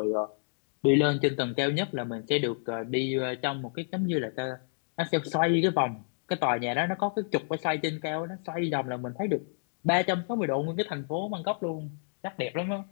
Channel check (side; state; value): right; silent; digital silence